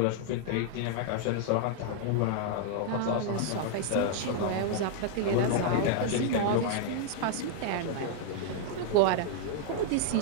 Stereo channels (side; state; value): both; different; correlation -0.01